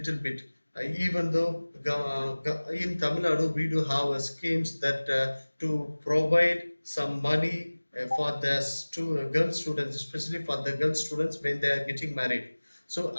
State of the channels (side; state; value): both; inverted; correlation -1.00